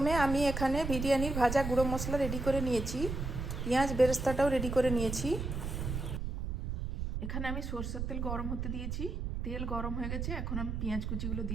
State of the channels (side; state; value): right; noise; rumble, 3 dB below the sound